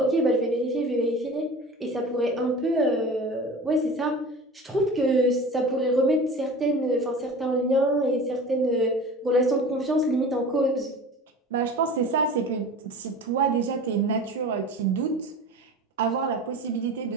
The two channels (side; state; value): both; normal; correlation 0.37